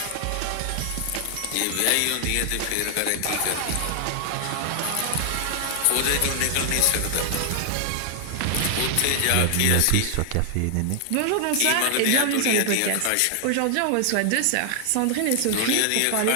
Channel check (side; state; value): both; different; correlation 0.00